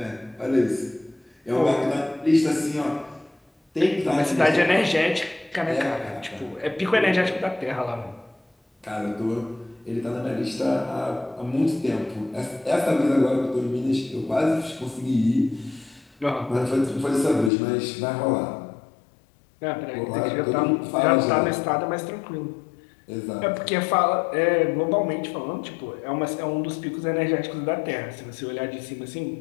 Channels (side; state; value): right; drops out; at 17.5 s